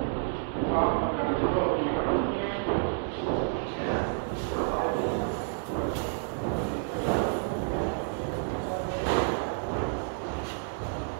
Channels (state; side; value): silent; left; 58 dB below the other